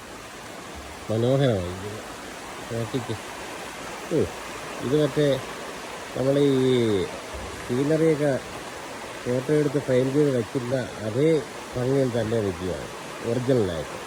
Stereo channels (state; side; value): identical; both; correlation 1.00